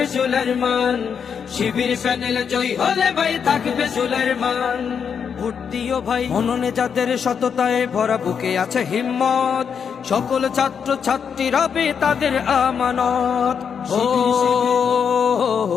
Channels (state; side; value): quieter; right; 7.0 dB